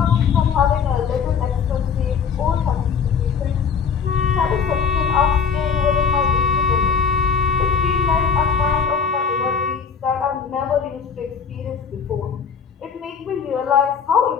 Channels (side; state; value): right; quieter; 6.4 dB